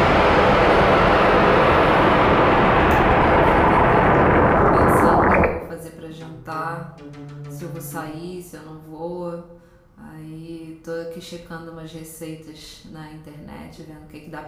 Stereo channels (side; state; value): both; identical; correlation 1.00